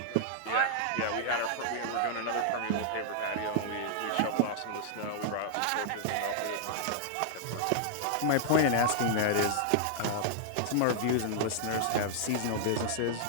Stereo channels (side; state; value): both; different; correlation -0.01